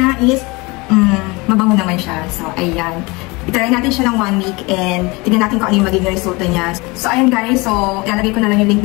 is mabango naman siya. So ayan. Itry natin siya ng 1 week and tignan natin kung ano yung magiging resulta niya. So, ayan guys. So, ilalagay ko na lang yung link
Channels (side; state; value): right; quieter; 25.2 dB